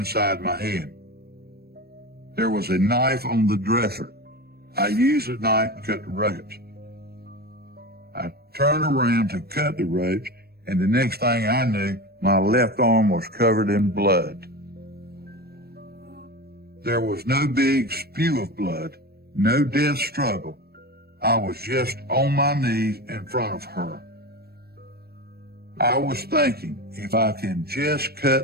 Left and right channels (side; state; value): left; late; 0.46 ms